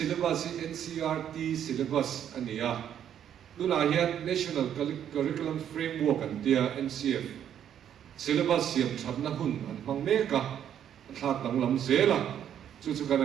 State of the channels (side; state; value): left; quieter; 9.7 dB